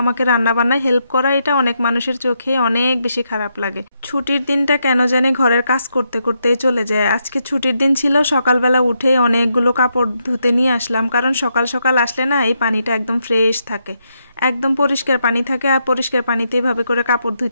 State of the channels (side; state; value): both; inverted; correlation -0.80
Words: রান্নাবান্নায় হেল্প করা, এটা অনেক মানুষের চোখে অনেক বেশি খারাপ লাগে। ছুটির দিনটা কেন জানি ঘরের কাজ করতে করতেই চলে যায়। আজকে ছুটির দিন ছিল, সকালবেলা উঠে অনেকগুলো কাপড় ধুতে নিয়ে আসলাম, কারণ সকাল সকাল আসলে না এই পানিটা একদম ফ্রেশ থাকে, একদম পরিষ্কার পানি থাকে। আর পরিষ্কার পানিতে এভাবে করে কাপড়